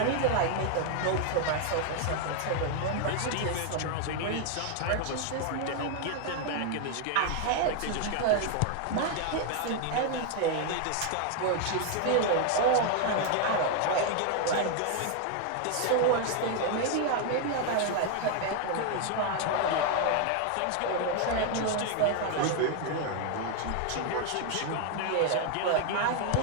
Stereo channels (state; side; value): different; both; correlation 0.00